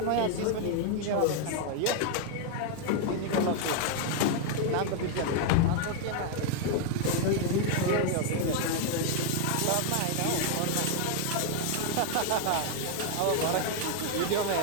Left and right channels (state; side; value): different; both; correlation 0.00